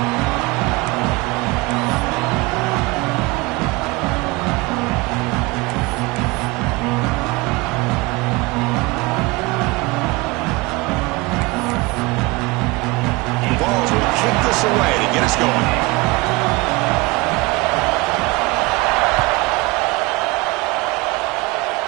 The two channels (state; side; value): quieter; left; 23.9 dB